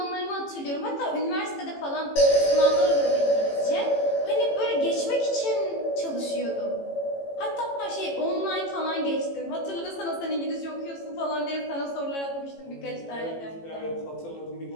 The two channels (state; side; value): late; right; 18 ms